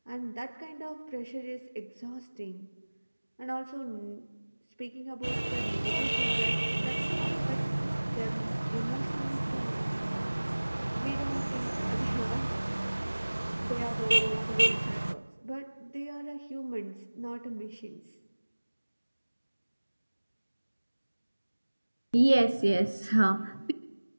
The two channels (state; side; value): inverted; both; correlation -1.00